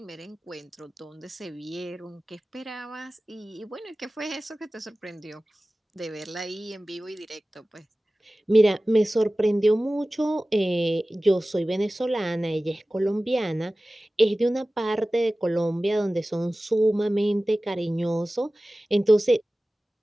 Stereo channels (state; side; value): normal; both; correlation 0.97